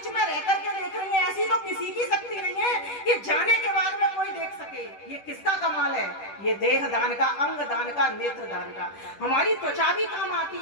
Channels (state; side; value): late; right; 10 ms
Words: में रहकर के देख रही है, ऐसी तो किसी की शक्ति नहीं है कि जाने के बाद में कोई देख सके। ये किसका कमाल है? ये देह दान का, अंग दान का, नेत्र दान का। हमारी त्वचा भी काम आती